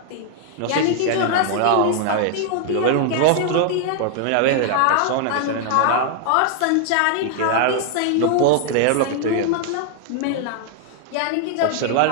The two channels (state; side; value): different; both; correlation 0.00